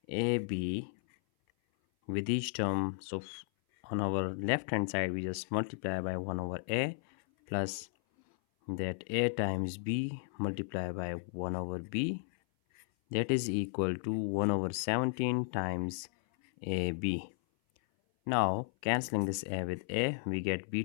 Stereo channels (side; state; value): right; silent; 55 dB below the other